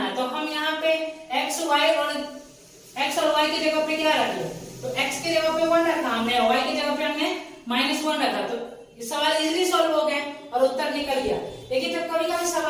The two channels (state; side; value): identical; both; correlation 1.00